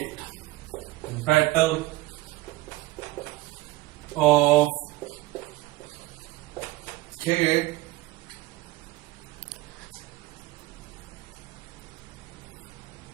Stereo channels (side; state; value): left; quieter; 18.9 dB